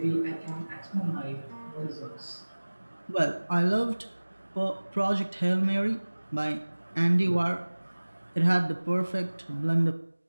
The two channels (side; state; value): both; inverted; correlation -1.00